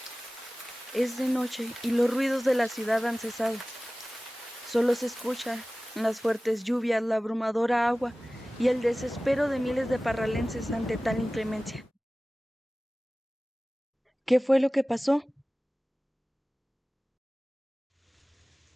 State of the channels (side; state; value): both; normal; correlation 0.97